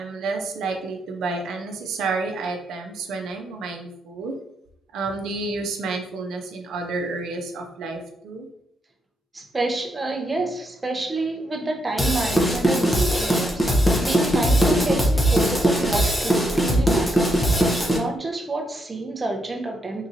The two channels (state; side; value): normal; both; correlation 0.79